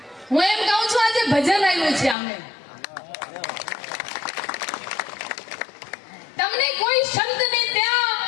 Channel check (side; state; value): right; drops out; at 2.1 s